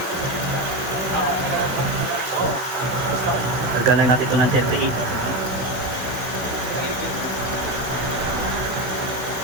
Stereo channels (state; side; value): late; left; 16 ms